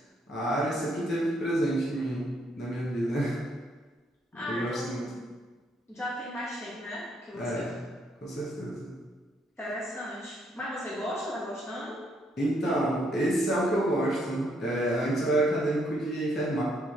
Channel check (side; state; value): both; normal; correlation 0.72